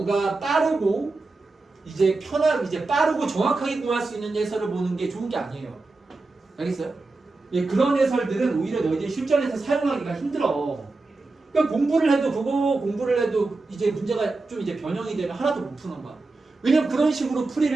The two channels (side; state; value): left; quieter; 3.5 dB